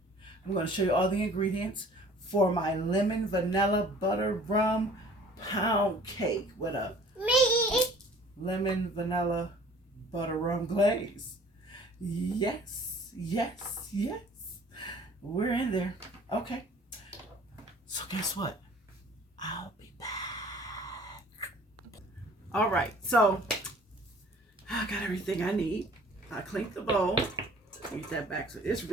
I'm gonna show you all the ingredients for my lemon vanilla butter rum pound cake with a lemon vanilla butter rum glaze. Yes. We're in there. Okay. So guess what? I'll be back. All right. So I got everything I need. I cleaned the bowl. Get that back. So this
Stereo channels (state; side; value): normal; both; correlation 0.51